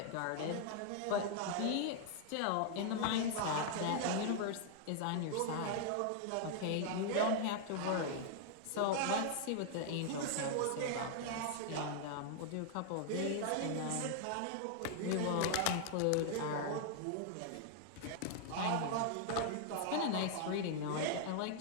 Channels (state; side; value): different; both; correlation 0.00